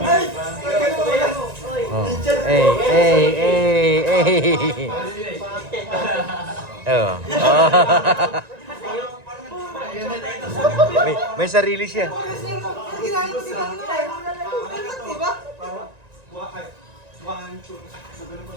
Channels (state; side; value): late; left; 1.9 ms